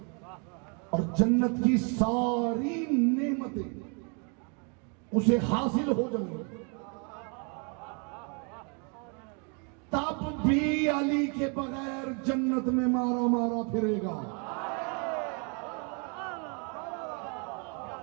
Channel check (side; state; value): left; quieter; 36.7 dB